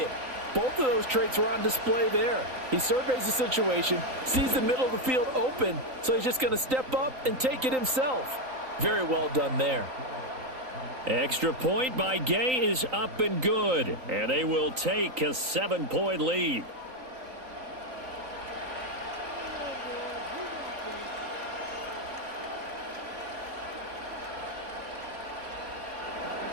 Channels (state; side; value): late; left; 3.9 ms